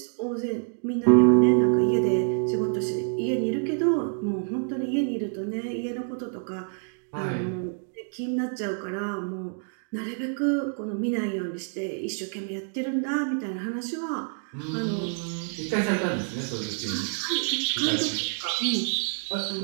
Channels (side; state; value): left; silent; 60 dB below the other